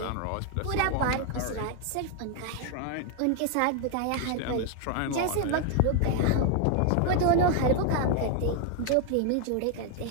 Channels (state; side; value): different; both; correlation 0.00